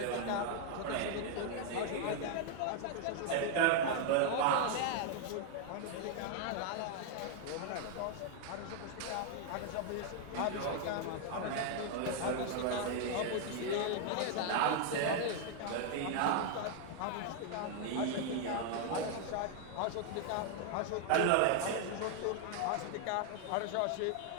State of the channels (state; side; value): different; both; correlation 0.00